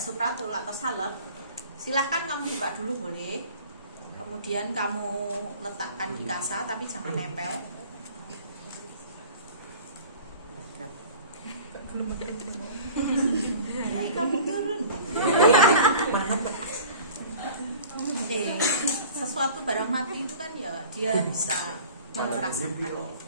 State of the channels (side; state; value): both; inverted; correlation -0.44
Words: supratul atau salep, silahkan kamu buka dulu boleh. Kemudian kamu letakkan di kasa tapi jangan nempel. Belum pakai itu. Kamu tuh itu kan ya dia bisa merasakan.